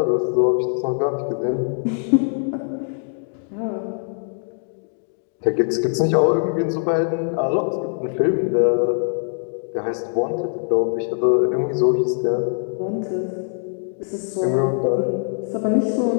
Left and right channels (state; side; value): silent; right; digital silence